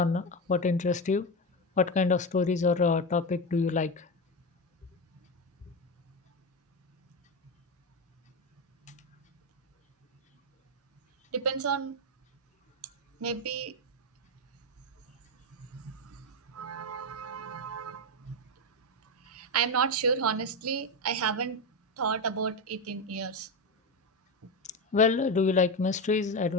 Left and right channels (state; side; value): normal; both; correlation 0.14